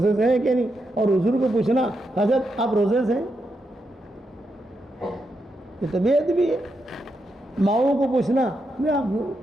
سے ہیں کہ نہیں. اور حضور کو پوچھنا حضرت آپ روزے سے ہیں, یہ تو بے ادبی ہے. ماؤں کو پوچھنا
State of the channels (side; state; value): both; normal; correlation 0.84